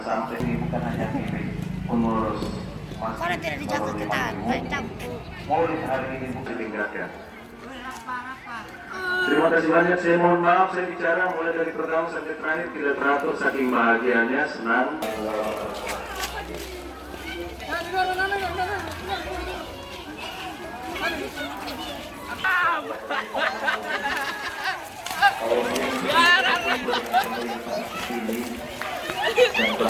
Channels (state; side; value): identical; both; correlation 1.00